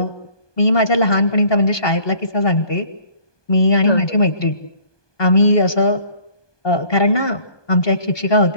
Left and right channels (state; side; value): late; right; 1.2 ms